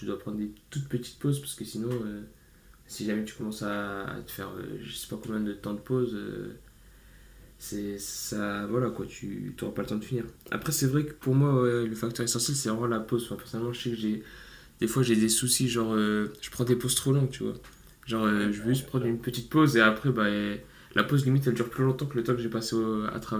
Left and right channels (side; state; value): both; identical; correlation 1.00